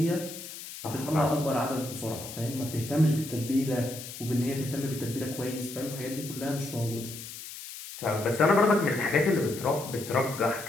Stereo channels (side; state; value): left; noise; hiss, 12 dB below the sound